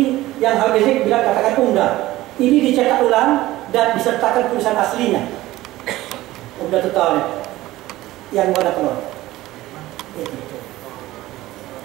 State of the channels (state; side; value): quieter; left; 16.8 dB